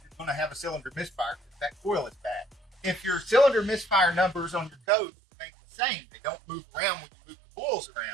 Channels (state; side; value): drops out; left; at 4.8 s